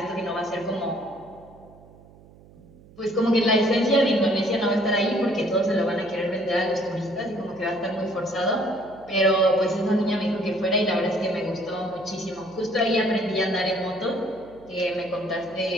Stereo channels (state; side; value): noise; right; hum, 24 dB below the sound